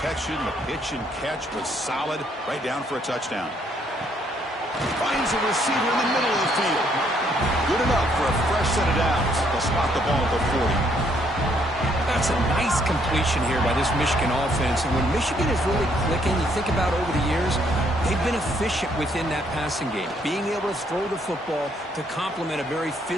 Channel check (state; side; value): normal; both; correlation 0.69